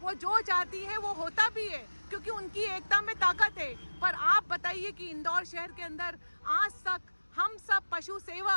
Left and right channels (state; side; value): inverted; both; correlation -1.00